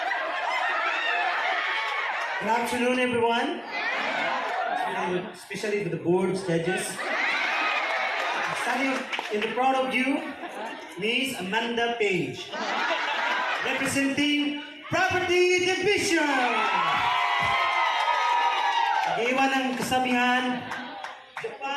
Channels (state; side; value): identical; both; correlation 1.00